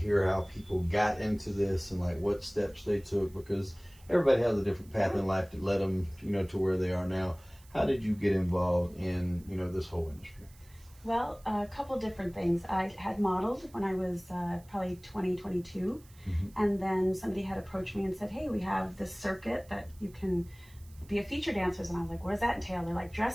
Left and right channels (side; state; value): right; noise; hiss, 26 dB below the sound